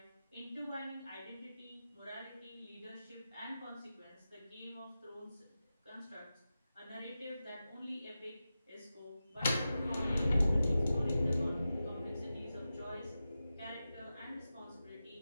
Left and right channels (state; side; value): inverted; both; correlation -0.93